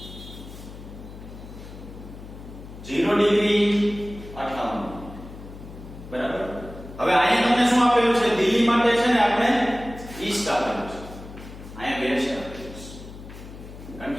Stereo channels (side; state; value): left; noise; hum, 14 dB below the sound